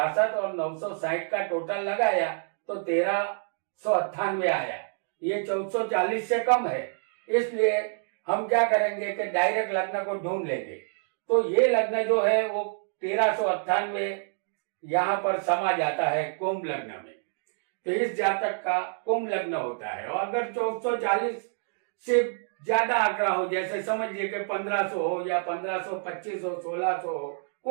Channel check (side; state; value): left; silent; 60 dB below the other